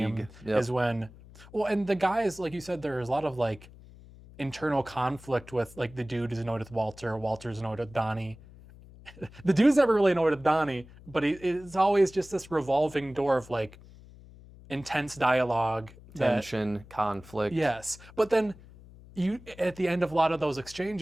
Yep. is when, and the guys, like you said, there's a lot of like internal conflict with, like, the dude is annoyed with Walter, Walter's annoyed with Donnie. The dude's never really annoyed with Donnie, but it's always just this revolving door of like intense dialogue, Tension, conflict. Yes, but then at the end of a lot of those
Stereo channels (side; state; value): left; noise; hum, 21 dB below the sound